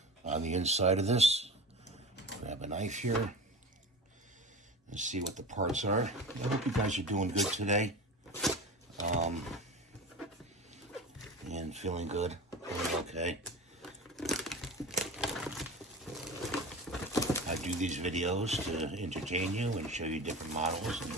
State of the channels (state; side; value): normal; both; correlation 0.31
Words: on the inside of this. Grab a knife here and see what the parts are. I hope you guys are doing good today. And feeling good. Feeling okay. I do these videos to entertain you and show you different models and